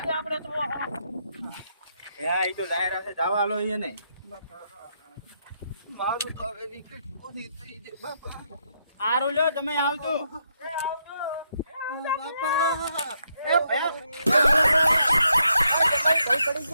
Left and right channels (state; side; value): inverted; both; correlation -0.78